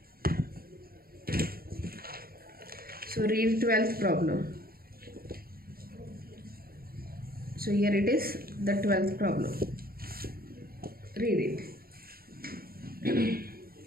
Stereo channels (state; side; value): late; left; 0.44 ms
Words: So read 12th problem. So here it is, the 12th problem. Read it.